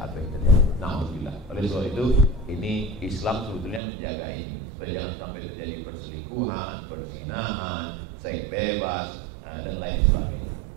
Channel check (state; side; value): drops out; left; at 3.8 s